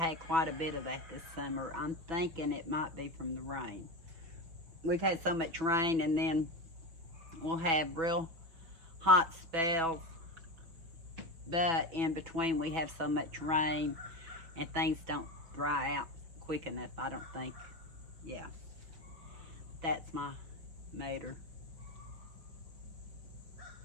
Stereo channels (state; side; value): late; left; 6.1 ms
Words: quite a bit of that this summer. I'm thinking it might be from the rain. We've had so much rain, and then we'll have real hot spells, but in between we have so much rain and things don't dry out quick enough, I don't think. Yeah, that's my motor.